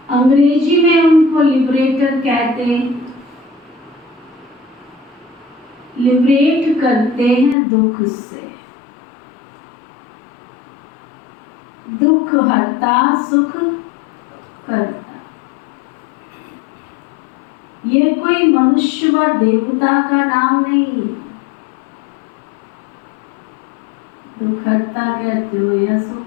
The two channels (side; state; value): right; drops out; at 7.6 s